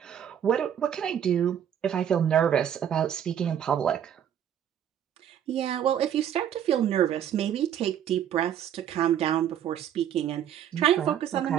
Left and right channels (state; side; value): quieter; left; 9.7 dB